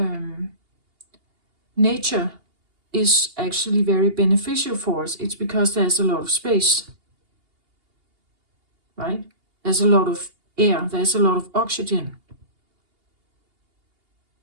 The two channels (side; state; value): left; late; 2.8 ms